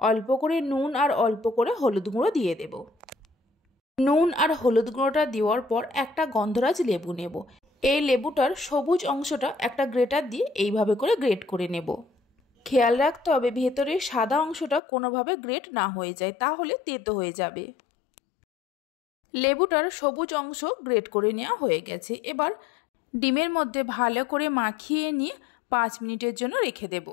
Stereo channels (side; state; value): right; drops out; at 14.8 s